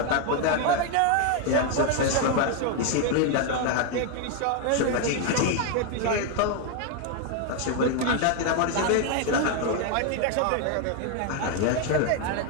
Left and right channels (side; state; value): both; different; correlation 0.01